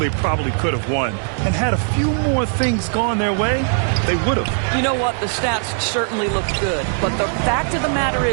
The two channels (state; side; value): silent; left; 64 dB below the other